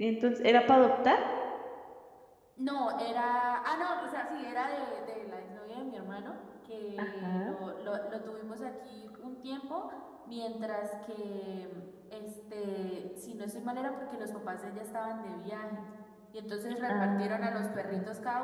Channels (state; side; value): identical; both; correlation 1.00